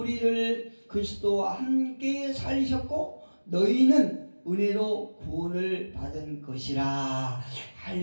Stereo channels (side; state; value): both; inverted; correlation -1.00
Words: 그리스도와 함께 살리셨고 너희는 은혜로 구원을 받은 것이라.